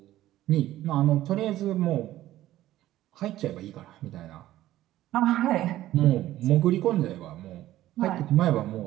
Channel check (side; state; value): left; quieter; 14.5 dB